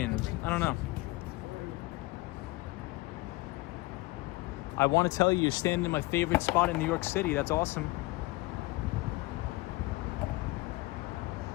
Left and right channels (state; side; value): quieter; right; 21.2 dB